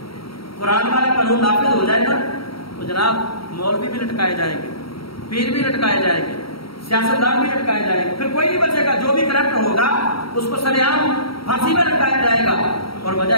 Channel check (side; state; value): right; late; 0.75 ms